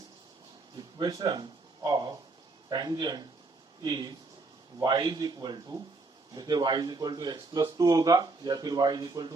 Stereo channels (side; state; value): left; quieter; 3.5 dB